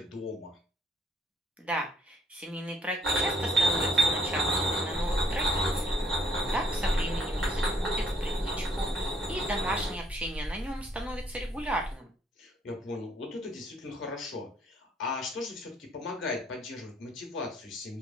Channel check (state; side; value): normal; both; correlation 0.66